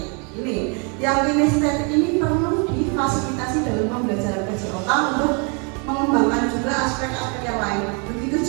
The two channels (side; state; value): left; quieter; 35.3 dB